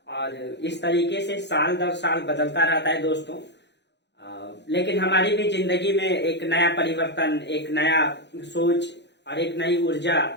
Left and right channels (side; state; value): right; late; 0.50 ms